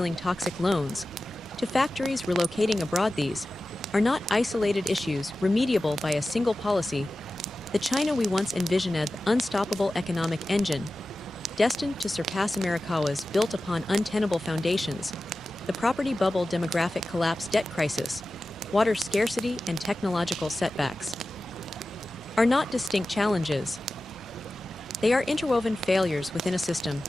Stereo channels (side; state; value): both; normal; correlation 0.95